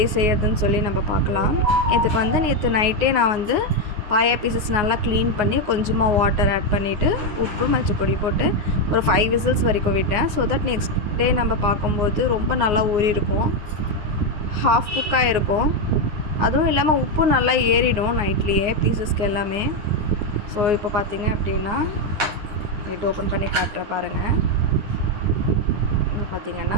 செய்யறதுன்னு சொல்லி நம்ம பார்க்கலாம். இதுக்கு வந்து நேற்று நைட்டே நான் வந்து பாயா பீசஸ் நல்லா க்ளீன் பண்ணி கொஞ்சமாக வாட்டர் ஆட் பண்ணிவிட்டு உப்பு மஞ்சள் பொடி போட்டு ஒரு 5 விசில்ஸ் வரைக்கும் விட்டேன். ஸோ தட் நெக்ஸ்ட் டே நம்ம பார்க்கும்போது ரொம்ப நல்லா ஊறி இருக்கும், ஹாஃப் குக்காக இருக்கும். அதுவும் இல்லாமல் உப்பு நல்லா ஏறிடும் நைட்லேயே பீசஸ்க்கு எல்லாமே. ஸோ இப்போ பார்த்தீங்க அப்படின்னா நைட் ஓப்பன் பண்ணி காட்டுறேன் பாருங்கள். பார்த்திங்கன்னா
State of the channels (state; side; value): late; left; 9.6 ms